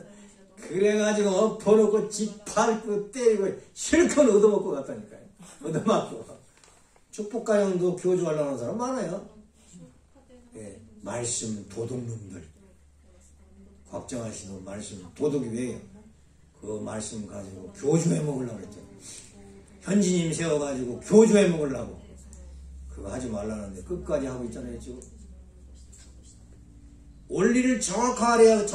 그래가지고 엎어놓고 짓밟고 때리고 실컷 얻어먹고 갔다니까요. 얻어맞고. 축복가형도 교주하려고 하는 사람 많아요. 예, 말씀 도둑놈들. 곽정환 씨도 말씀 도둑이 왜요? 그 말씀 가지고 교주해 먹으려고 그랬죠. 현지님 세워가지고 교주해 먹으려고. 그거 하지 말라는데 끝까지 하고 있잖아요 지금. 원리를 정확하게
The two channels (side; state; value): both; identical; correlation 1.00